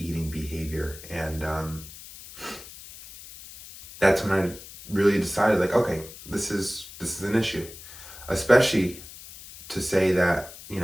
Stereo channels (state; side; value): noise; left; hiss, 16 dB below the sound